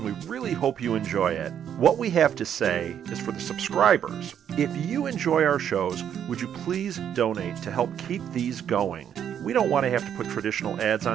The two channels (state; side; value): quieter; left; 9.1 dB